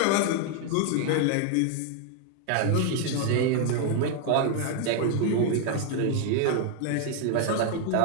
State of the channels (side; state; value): both; different; correlation 0.00